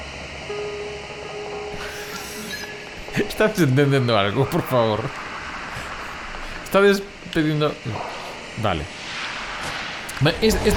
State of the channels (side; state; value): both; identical; correlation 1.00